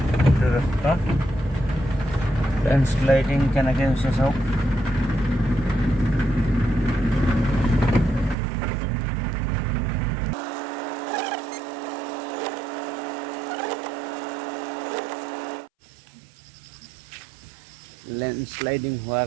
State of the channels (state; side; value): drops out; left; at 8.3 s